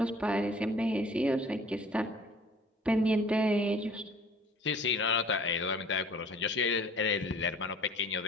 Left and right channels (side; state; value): both; normal; correlation 0.50